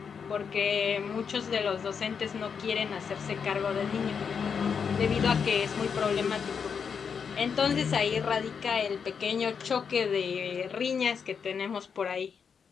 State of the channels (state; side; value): quieter; right; 6.5 dB